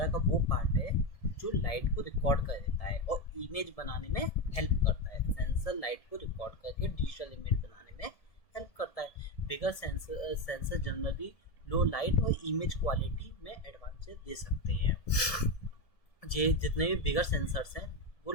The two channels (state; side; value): late; right; 1.7 ms